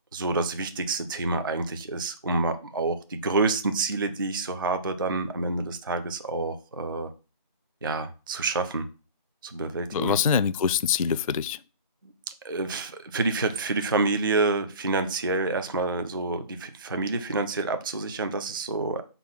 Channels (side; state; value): both; inverted; correlation -0.36